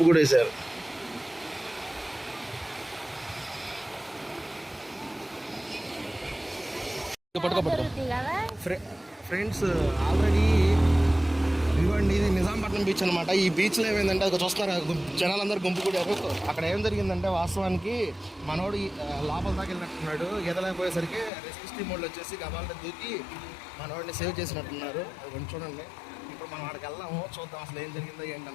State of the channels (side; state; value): right; drops out; at 21.3 s